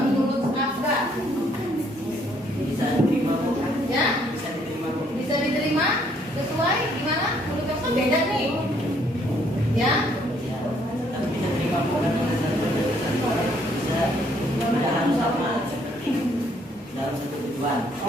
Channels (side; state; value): both; normal; correlation 0.67